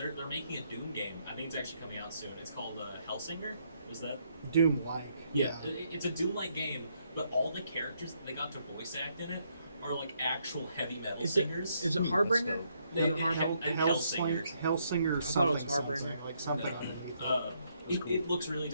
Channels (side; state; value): both; inverted; correlation -0.74